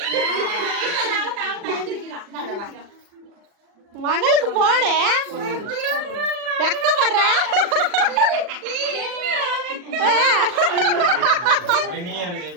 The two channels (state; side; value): late; left; 40 ms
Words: மகளுக்கு போடு வெக்கப்படுற